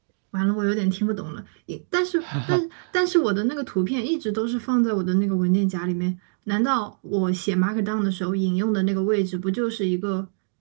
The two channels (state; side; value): silent; left; digital silence